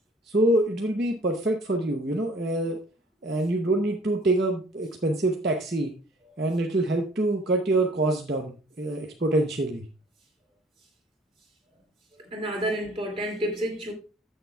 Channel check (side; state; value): both; normal; correlation 0.54